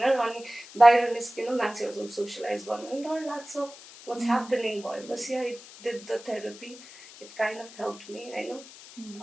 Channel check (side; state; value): left; noise; hiss, 18 dB below the sound